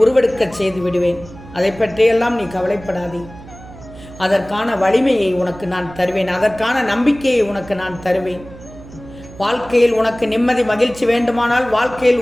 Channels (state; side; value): noise; right; hum, 18 dB below the sound